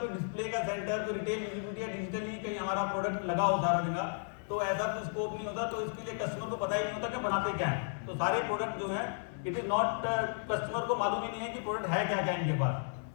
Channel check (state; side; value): silent; right; digital silence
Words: डिस्प्ले का सेंटर, कोई रिटेल विजिबिलिटी या डिजिटली कहीं हमारा प्रोडक्ट लगा हो सारा दिन, तो ऐसा कोई स्कोप नहीं होता। तो इसके लिए कस्टमर को पता ही नहीं होता कि बनाते क्या है। तो सारे प्रोडक्ट जो हैं, इट इज नॉट, कस्टमर को मालूम ही नहीं है कि प्रोडक्ट है क्या क्या इनके पास।